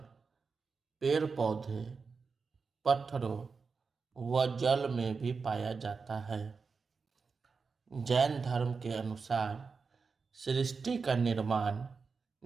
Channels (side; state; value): left; quieter; 4.9 dB